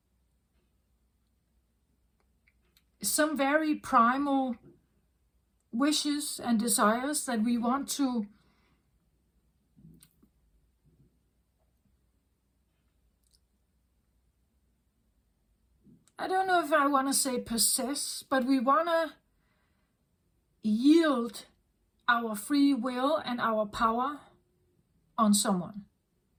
some very primal wishes and desires that we want to I don't know if I want to say possess, but we want to yield our free will and our power on someone,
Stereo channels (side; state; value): both; identical; correlation 1.00